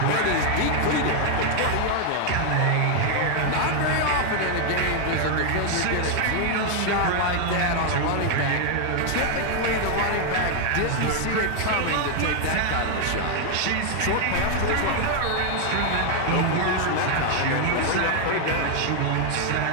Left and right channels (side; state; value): both; different; correlation 0.00